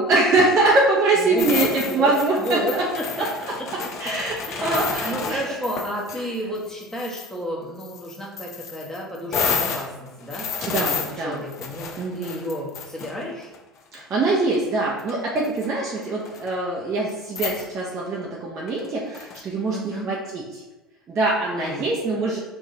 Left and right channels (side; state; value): both; normal; correlation 0.43